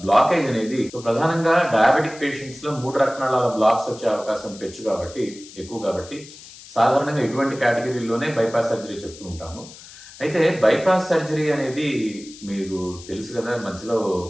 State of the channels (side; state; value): left; noise; hiss, 18 dB below the sound